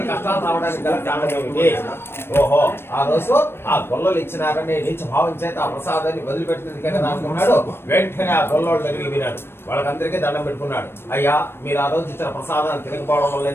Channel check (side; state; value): right; late; 0.12 ms